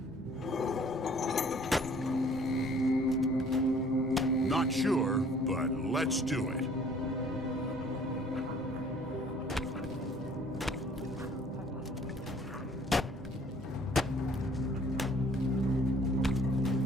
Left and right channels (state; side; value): noise; left; hum, 23 dB below the sound